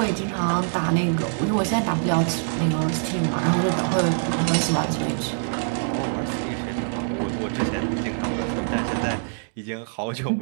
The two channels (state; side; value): silent; left; digital silence